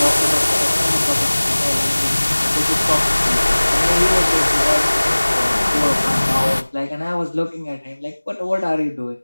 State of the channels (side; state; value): both; inverted; correlation -1.00